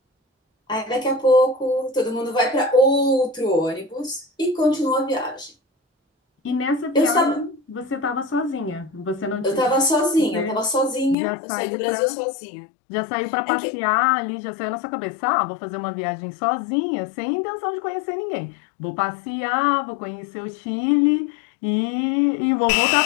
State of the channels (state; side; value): drops out; right; at 11.2 s